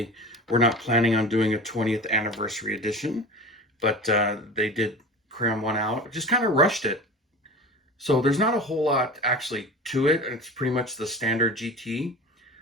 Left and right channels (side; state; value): both; normal; correlation 0.33